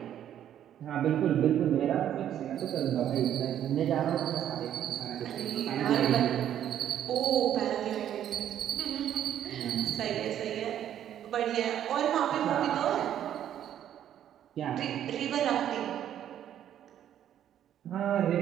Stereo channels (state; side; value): quieter; left; 10.6 dB